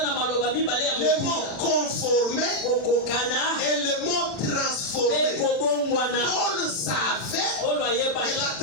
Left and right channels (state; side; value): late; right; 40 ms